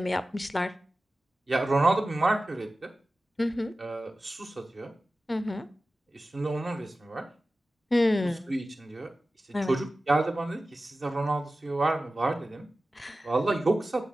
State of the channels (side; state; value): both; normal; correlation 0.95